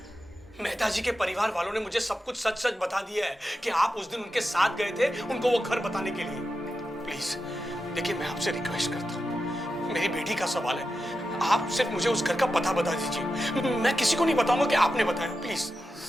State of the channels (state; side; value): normal; both; correlation 0.90